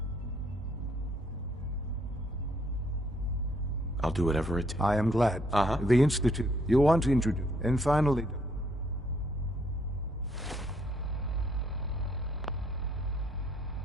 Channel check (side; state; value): both; normal; correlation 0.69